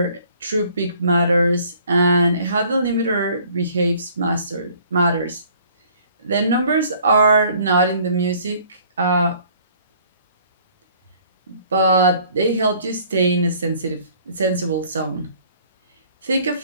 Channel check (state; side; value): inverted; both; correlation -0.57